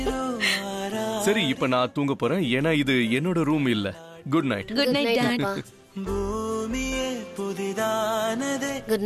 சரி, இப்ப நான் தூங்க போறேன். ஏன்னா இது என்னோட ரூம் இல்ல. Good night. Good night dad. Good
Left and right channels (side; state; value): both; identical; correlation 1.00